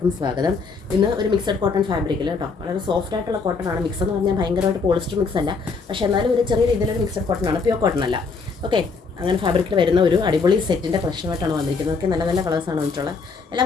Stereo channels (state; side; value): quieter; right; 4.7 dB